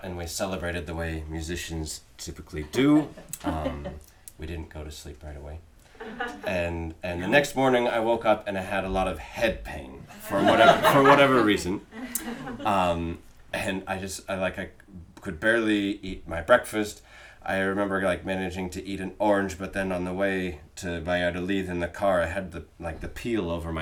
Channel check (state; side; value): identical; both; correlation 1.00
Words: and we celebrated the way musicians typically do. We didn't go to sleep right away. And the next morning I woke up and I had a lot of head pain for whatever reason. And I could barely eat my breakfast. I remember managing to eat an orange, but then on the way to Valladolid in the car, I had the peel over